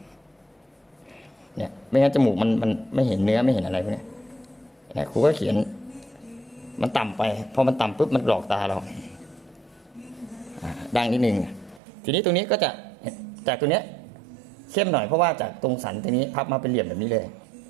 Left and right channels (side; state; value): left; drops out; at 11.8 s